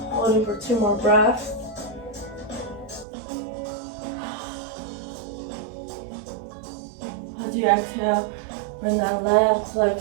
Holding for 2 more breaths. As you exhale, bring that left leg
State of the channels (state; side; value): drops out; left; at 3.1 s